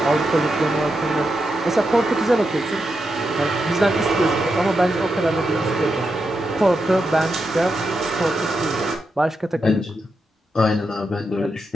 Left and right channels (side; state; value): both; normal; correlation 0.86